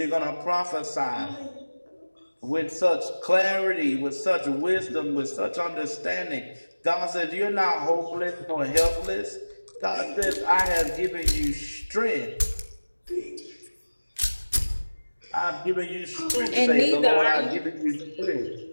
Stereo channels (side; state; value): both; inverted; correlation -1.00